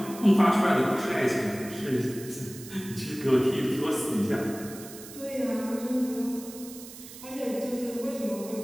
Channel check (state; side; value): noise; right; hiss, 15 dB below the sound